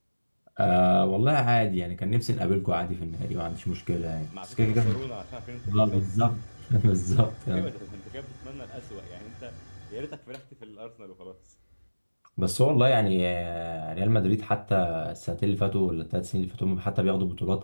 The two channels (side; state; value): both; inverted; correlation -1.00